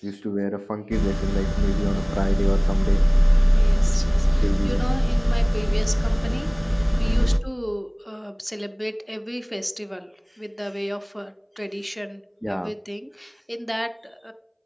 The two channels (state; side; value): identical; both; correlation 1.00